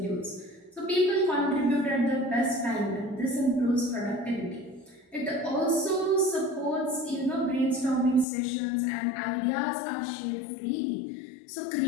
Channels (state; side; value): drops out; right; at 8.2 s